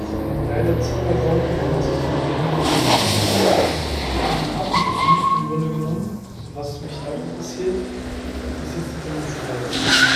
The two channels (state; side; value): identical; both; correlation 1.00